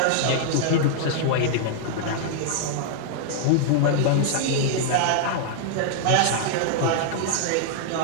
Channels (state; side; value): different; both; correlation -0.01